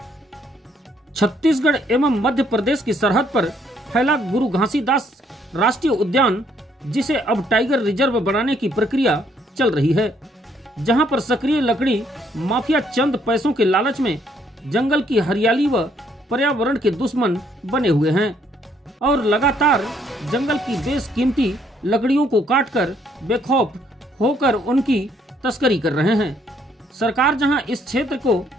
छत्तीसगढ़ एवं मध्य प्रदेश की सरहद पर फैला गुरु घासीदास राष्ट्रीय उद्यान, जिसे अब टाइगर रिजर्व बनाने की प्रक्रिया चल रही है, जहां पर सक्रिय लकड़ी माफिया चंद पैसों के लालच में जंगल की हरियाली व पर्यावरण के दुश्मन बने हुए हैं और लगातार जंगल की बेशकीमती लकड़ियों को काटकर बेखौफ होकर उनकी तस्करी कर रहे हैं। सरकार जहां इस क्षेत्र को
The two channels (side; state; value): both; normal; correlation 0.68